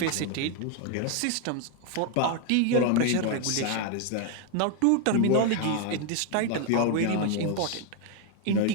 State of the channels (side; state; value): both; different; correlation 0.01